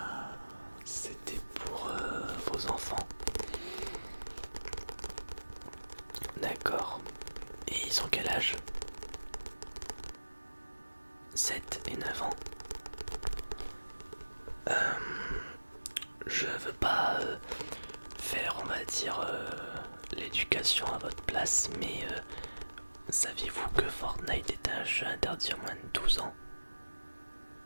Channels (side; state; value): both; inverted; correlation -1.00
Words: c'était pour vos enfants. D'accord. Et ils ont quel âge? 7 et 9 ans. Je veux pas faire, on va dire, l'éducation à votre place, mais saviez-vous que Fortnite est un jeu interdit à moins de 12 ans?